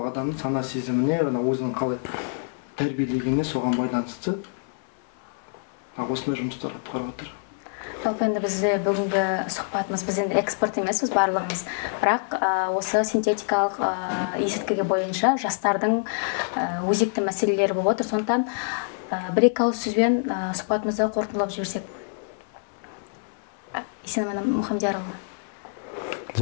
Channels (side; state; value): right; silent; 61 dB below the other